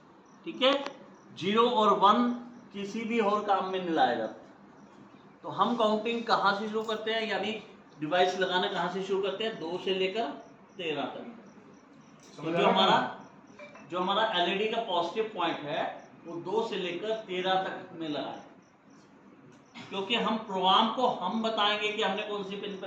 ठीक है, 0 और 1 किसी भी और काम में नहीं लाया जाता। तो हम काउंटिंग कहाँ से शुरू करते हैं, यानी डिवाइस लगाना कहाँ से शुरू करते हैं? 2 से लेकर 13 तक। तो जो हमारा एलईडी का पॉजिटिव पॉइंट है वो 2 से लेकर 13 तक में लगाए, क्योंकि हम प्रोग्राम को हम बताएंगे कि हमने कौन सी पिन पर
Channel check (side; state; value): both; identical; correlation 1.00